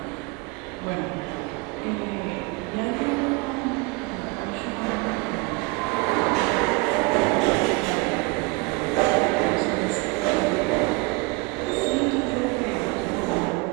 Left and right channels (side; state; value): left; quieter; 25.6 dB